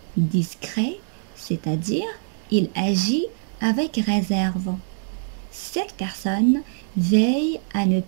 discret, c'est-à-dire il agit avec réserve. Cette personne veille à ne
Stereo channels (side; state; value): left; silent; digital silence